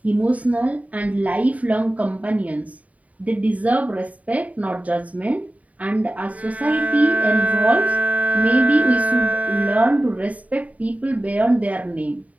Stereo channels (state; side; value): late; left; 0.070 ms